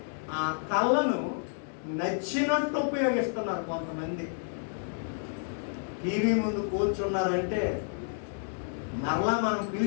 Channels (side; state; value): right; silent; digital silence